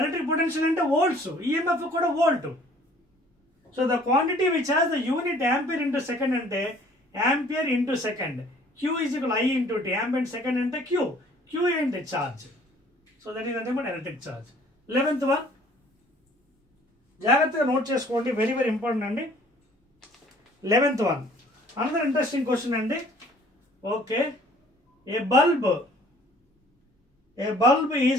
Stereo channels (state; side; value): normal; both; correlation 0.55